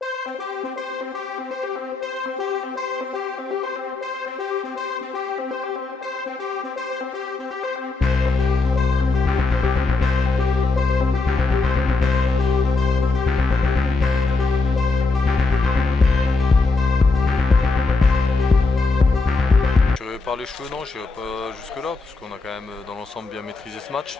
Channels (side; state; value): right; quieter; 3.7 dB